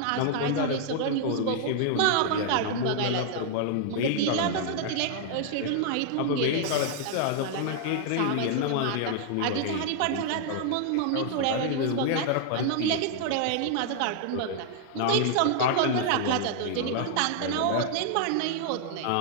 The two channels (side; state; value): both; different; correlation 0.00